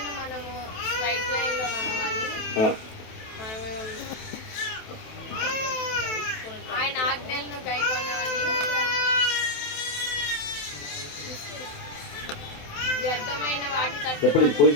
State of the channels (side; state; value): right; late; 27 ms